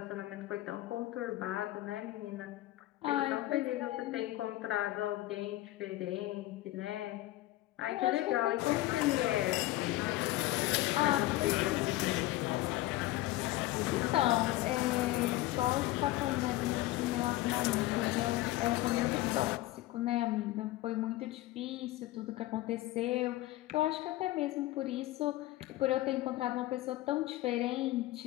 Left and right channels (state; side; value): quieter; right; 16.8 dB